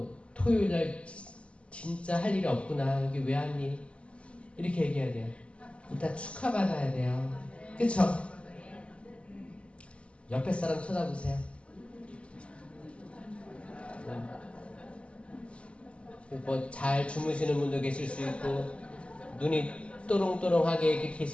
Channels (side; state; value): right; late; 0.057 ms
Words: 토요일날 진짜 할 일이 없구나. 여기 왜 왔니? 이렇게 얘기해야 돼요. 일단 축하받아야 돼요. 그쵸? 옆에 사람 쳐다보세요. 뭐 잘 주무시는 분도 계실 수 있고 눈이 또롱또롱하게 이렇게